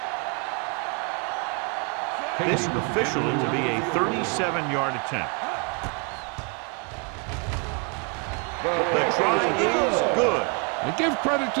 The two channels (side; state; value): left; quieter; 35.2 dB